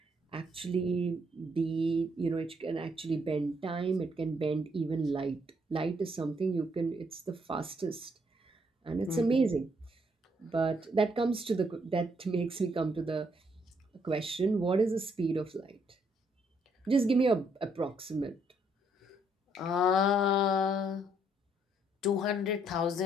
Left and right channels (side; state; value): both; normal; correlation 0.71